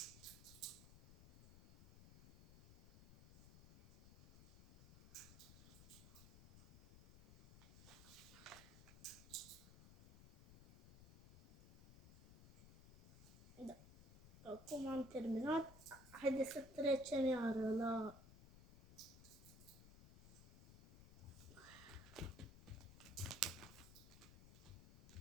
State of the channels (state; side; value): noise; left; rumble, 17 dB below the sound